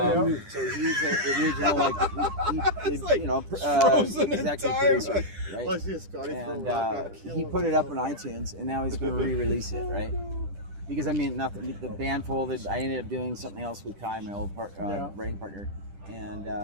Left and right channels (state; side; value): late; left; 10 ms